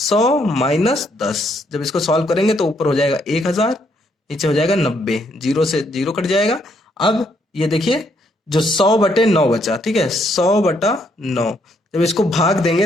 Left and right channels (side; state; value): both; normal; correlation 0.72